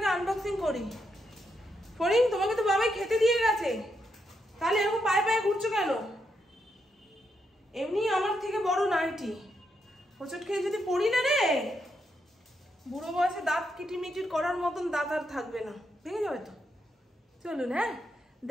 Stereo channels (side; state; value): both; normal; correlation 0.81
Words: আনবক্সিং করি। ফরিং, তোমাকে তো বাবাই খেতে দিয়ে গেছে, তাহলে এরকম পায়ে পায়ে ঘুরছো কেন? এমনি আমার থেকে বড় নাইটি, হোঁচট খেয়ে যদি পড়ি না রে, বুড়ো বয়সে দাঁত কিটিমিটির করার মতন দাঁত আর থাকবে না, ভেঙে যাবে তো। চলুন হ্যাঁ